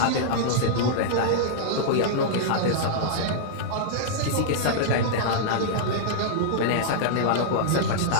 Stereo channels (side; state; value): both; different; correlation -0.02